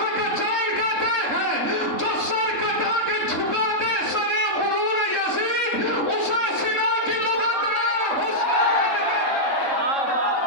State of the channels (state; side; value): late; right; 3.7 ms